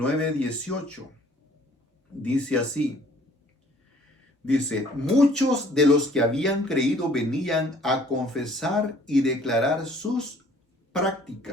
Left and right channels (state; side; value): normal; both; correlation 0.57